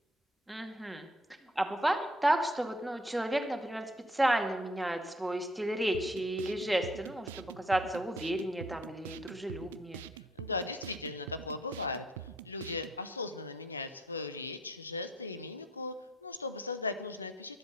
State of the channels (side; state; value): both; normal; correlation 0.65